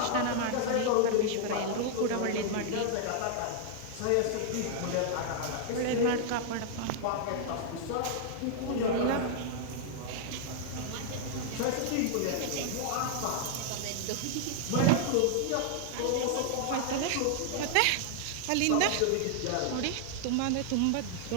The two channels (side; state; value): both; different; correlation 0.00